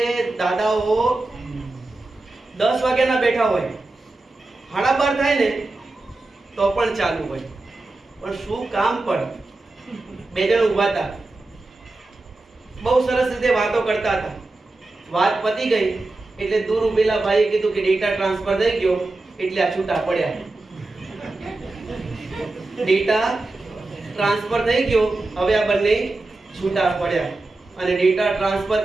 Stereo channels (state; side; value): quieter; left; 3.1 dB